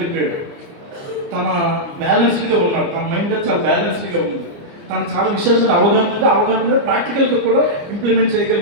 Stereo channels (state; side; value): late; left; 29 ms